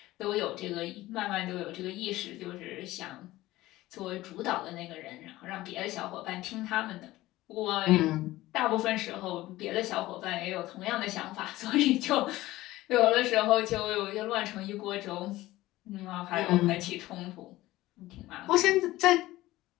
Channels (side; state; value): right; quieter; 17.2 dB